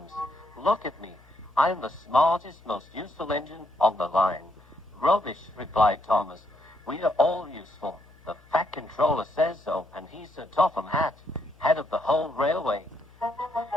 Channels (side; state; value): left; noise; hum, 27 dB below the sound